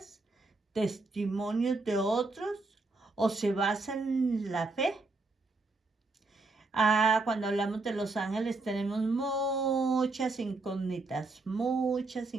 testimonios de otros, o se basan en la fe? Cuando hablamos de los ángeles tenemos muchas incógnitas, muchas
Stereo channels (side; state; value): left; quieter; 3.4 dB